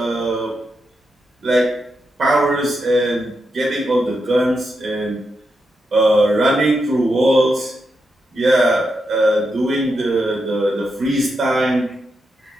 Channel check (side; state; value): both; normal; correlation 0.85